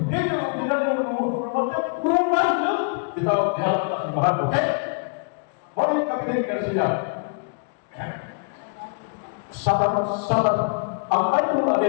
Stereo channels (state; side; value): quieter; right; 36.6 dB